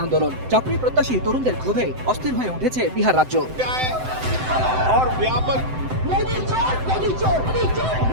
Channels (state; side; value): late; left; 7.8 ms